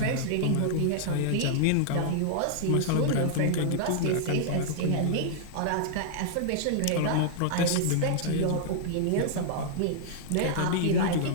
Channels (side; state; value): both; different; correlation -0.01